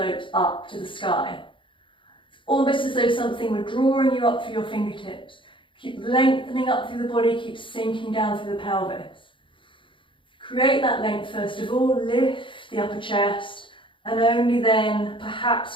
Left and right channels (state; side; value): late; right; 0.24 ms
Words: up to the sky. It's almost as though something were drawing you up through your fingertips. Keep lengthening up through the body, keep sinking down through the pelvis. Create that length first of all, lift the upper chest, and only then